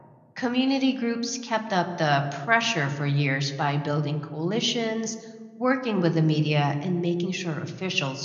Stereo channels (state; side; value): identical; both; correlation 1.00